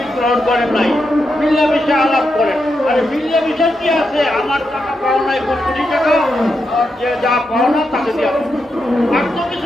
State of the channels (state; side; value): normal; both; correlation 0.85